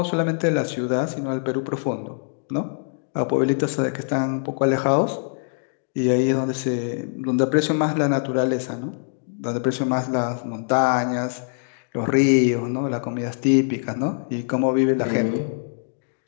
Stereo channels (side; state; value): right; silent; digital silence